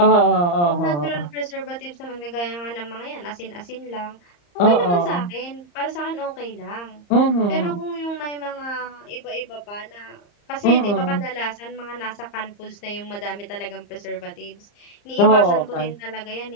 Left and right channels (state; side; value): late; right; 34 ms